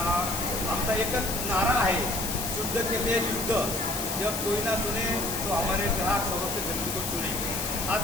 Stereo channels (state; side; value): noise; left; hiss, 3 dB below the sound